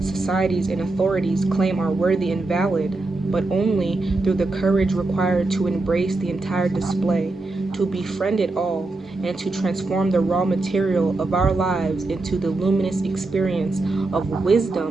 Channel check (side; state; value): left; quieter; 3.2 dB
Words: and authorities claim are worthy and valid, but only through the courage required to embrace the entire display, to befriend it all, and to transform the raw material of our lives into the luminous experience of